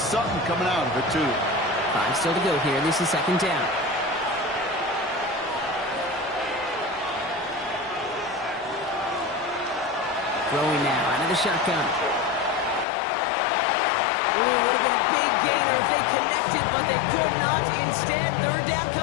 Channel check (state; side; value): drops out; right; at 12.9 s